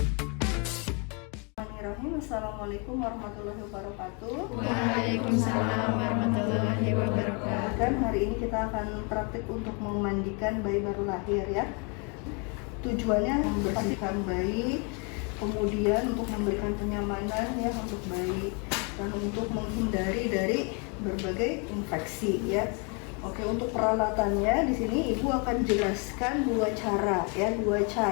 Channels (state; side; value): quieter; right; 34.5 dB